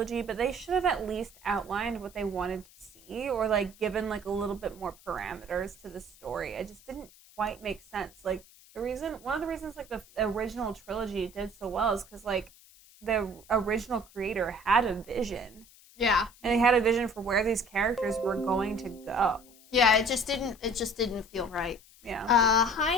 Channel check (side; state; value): left; noise; hiss, 24 dB below the sound